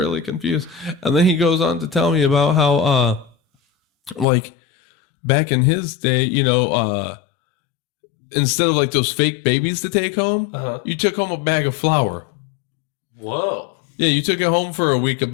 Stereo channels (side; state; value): right; drops out; at 4.2 s